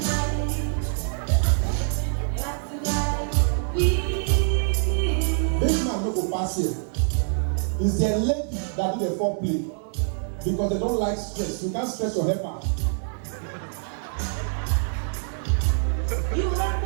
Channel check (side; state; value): left; silent; digital silence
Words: That's the night we had. Big man no go pass here. It's their lady that do the foreplay because they don't like stress. You can't stress your helper. You let